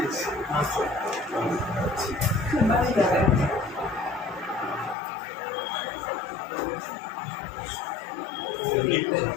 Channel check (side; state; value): right; drops out; at 5.0 s